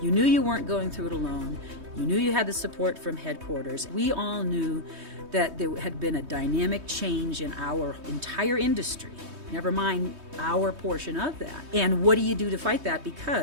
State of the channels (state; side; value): late; left; 3.2 ms